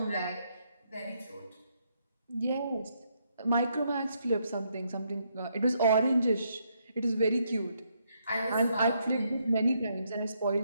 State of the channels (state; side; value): inverted; both; correlation -0.75